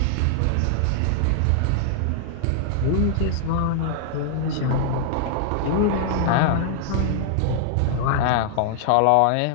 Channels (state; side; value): different; both; correlation -0.01